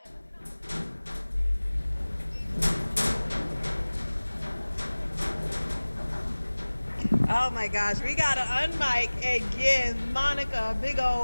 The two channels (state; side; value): inverted; both; correlation -1.00